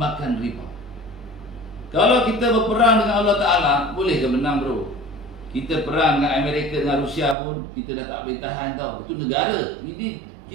riba. Kalau kita berperang dengan Allah Ta'ala, boleh ke menang bro? Kita perang dengan Amerika, dengan Rusia pun, kita dah tak boleh tahan tau. Itu negara, ini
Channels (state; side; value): drops out; left; at 7.4 s